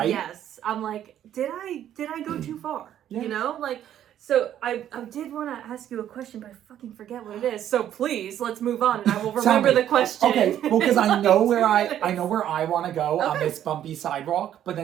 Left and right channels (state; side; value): quieter; left; 10.9 dB